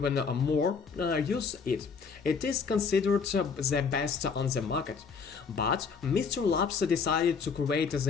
more use it. It is considered the best on the market. But Mysten Labs decided to create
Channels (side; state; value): right; quieter; 5.6 dB